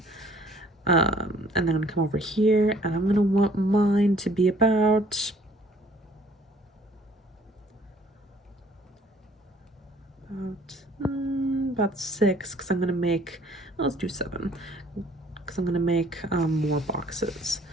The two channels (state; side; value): normal; both; correlation 0.58